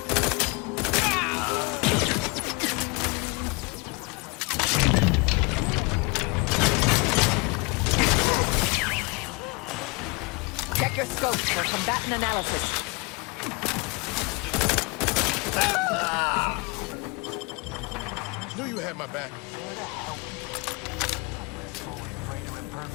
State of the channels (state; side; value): quieter; right; 28.9 dB